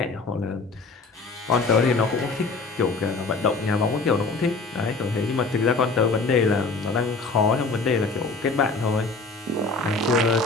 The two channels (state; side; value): quieter; right; 3.8 dB